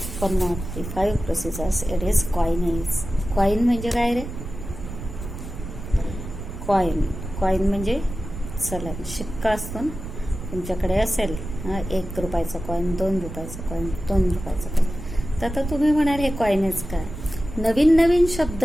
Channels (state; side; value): noise; right; rumble, 9 dB below the sound